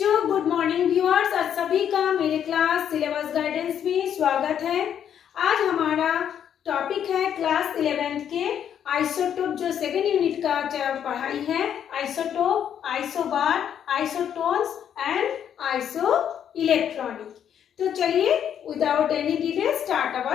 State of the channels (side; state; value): right; quieter; 9.1 dB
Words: good morning viewers. आज सभी का मेरे क्लास सिलेबस गाइडेंस में स्वागत है। आज हमारा टॉपिक है क्लास 11th के आइसोटोप जो सेकेंड यूनिट का पढ़ाई है। Isotope, isobar, isotones and iso electronic. तो चलिए without any delay start